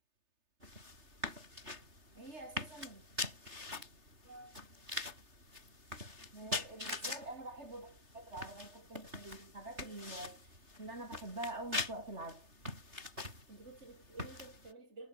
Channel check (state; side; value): late; left; 3.3 ms